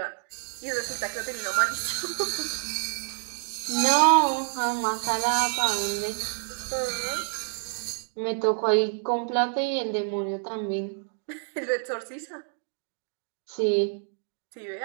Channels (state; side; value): silent; left; 58 dB below the other